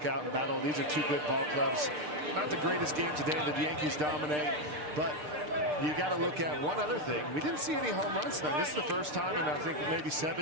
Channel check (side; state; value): left; late; 6.6 ms